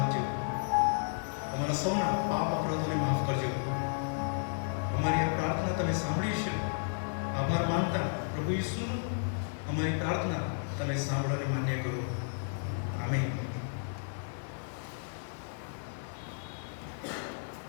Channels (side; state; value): right; silent; digital silence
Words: અમારા સૌના પાપ અપરાધોને માફ કરજો. અમારી આ પ્રાર્થના તમે સાંભળી છે. આભાર માનતા પ્રભુ ઈસુ અમારી પ્રાર્થના તમે સાંભળવાની માન્ય કરો. આમીન.